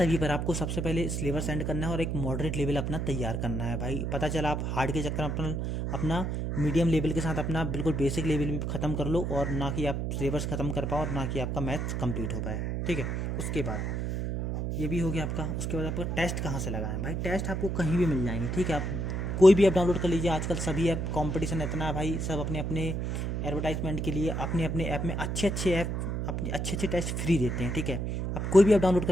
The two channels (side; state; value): right; noise; hum, 1 dB below the sound